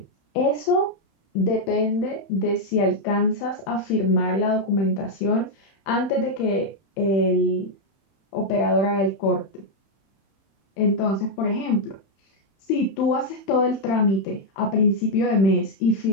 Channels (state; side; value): late; right; 31 ms